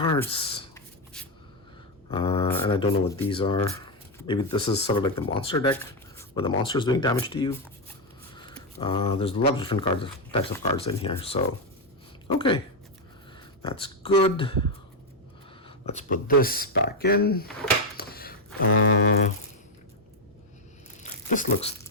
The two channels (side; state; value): both; normal; correlation 0.04